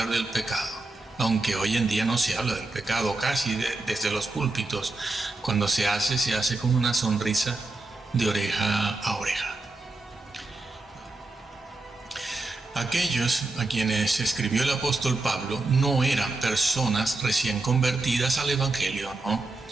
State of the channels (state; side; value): quieter; left; 3.2 dB